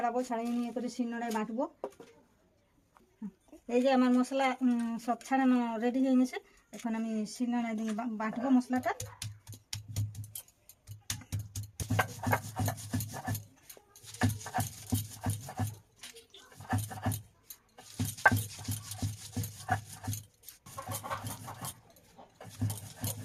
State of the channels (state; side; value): identical; both; correlation 1.00